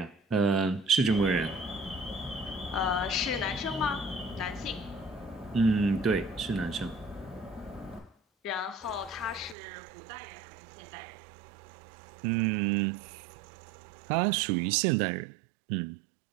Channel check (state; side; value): drops out; left; at 9.6 s